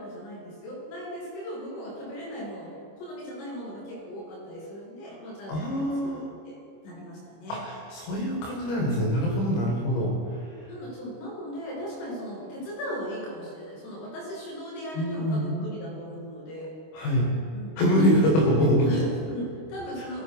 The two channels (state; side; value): late; right; 25 ms